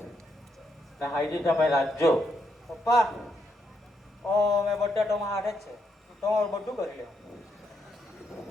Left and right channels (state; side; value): normal; both; correlation 0.79